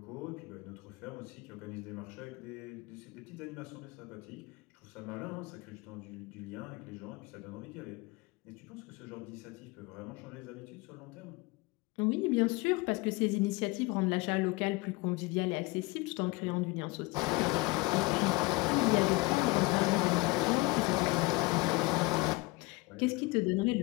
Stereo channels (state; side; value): quieter; right; 23.7 dB